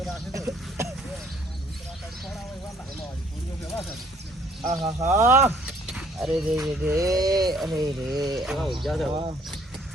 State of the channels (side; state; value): both; normal; correlation 0.61